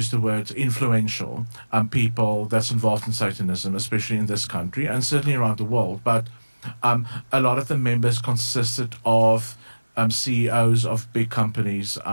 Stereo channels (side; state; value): both; inverted; correlation -1.00